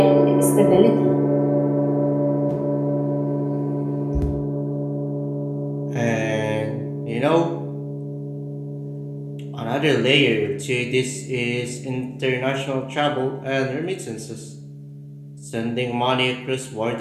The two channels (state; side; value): identical; both; correlation 1.00